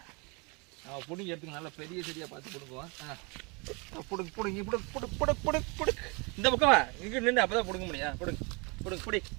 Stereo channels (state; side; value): quieter; left; 30.3 dB